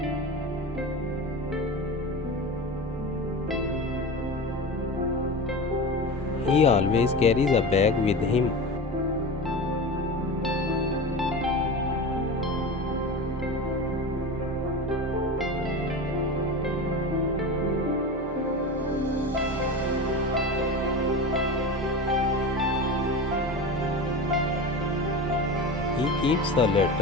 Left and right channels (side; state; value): both; normal; correlation 0.28